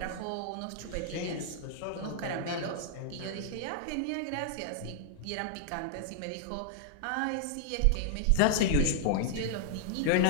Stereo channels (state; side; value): different; both; correlation -0.01